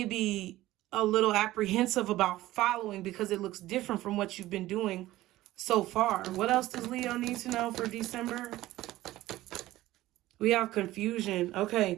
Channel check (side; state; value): left; quieter; 16.2 dB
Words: a little apprehensive about following because it looks different from what you've been doing so far. What else does Leo need to know for December? We have confusion.